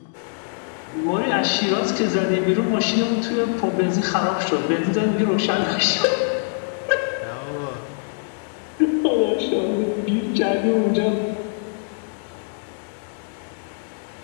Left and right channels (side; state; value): right; silent; 63 dB below the other